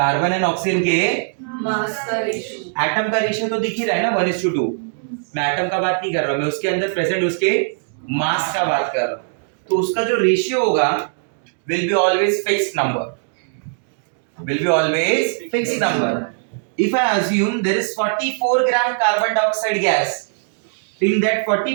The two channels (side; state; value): left; silent; digital silence